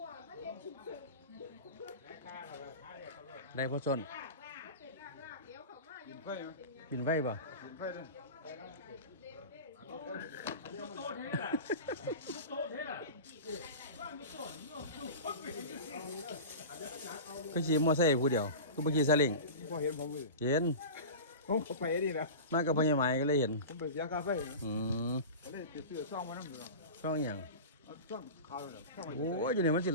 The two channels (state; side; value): inverted; both; correlation -0.31